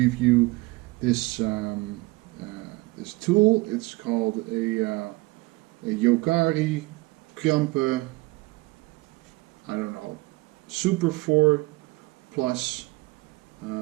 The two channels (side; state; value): left; quieter; 22.9 dB